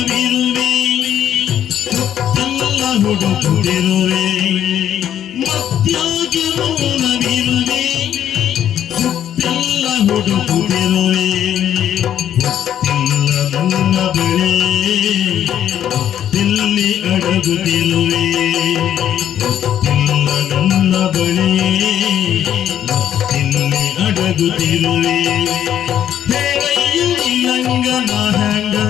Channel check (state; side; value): quieter; right; 10.4 dB